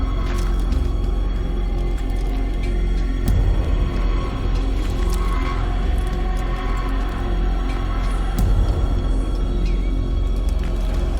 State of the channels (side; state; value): both; identical; correlation 1.00